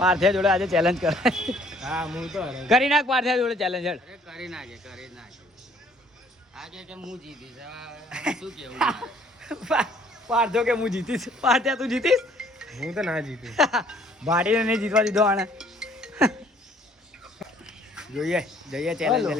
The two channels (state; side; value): normal; both; correlation 0.59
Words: જોડે આજે ચેલેન્જ કરાય. હા, હું તો કરી નાખ પાર્થિયા જોડે ચેલેન્જ. કરી નાખે આજે કે હું જીતીશ. શું કેવું? પાર્થો કે હું જીતીશ. પાર્થિયા તું જીતીશ? હું તો ના જીતીશ. ભાડીને નહીં જીતવા દીધો આને. જોઈએ ચેલેન્જ